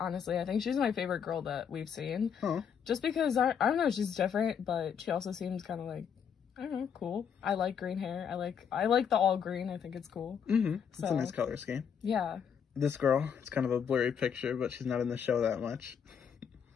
I think she's my favorite girl that we've seen. Oh. Just because, I don't know, she's different, but she also seems kind of like, I don't know, cool. I like green hair. I like the all green. I think it's cool. Mm-hmm. It's a nice color scheme. Yeah. This girl, it's kind of a blurry picture, but she's not in the show that much.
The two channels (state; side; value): quieter; right; 7.5 dB